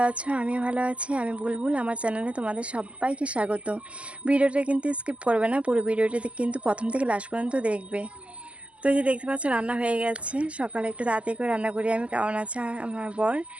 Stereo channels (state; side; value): late; left; 0.059 ms